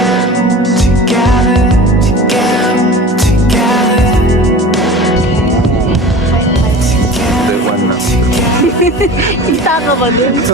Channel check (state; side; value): normal; both; correlation 0.38